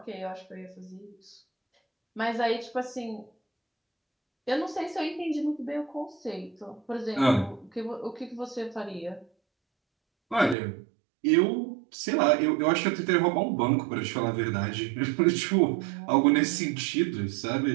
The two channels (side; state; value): left; drops out; at 10.6 s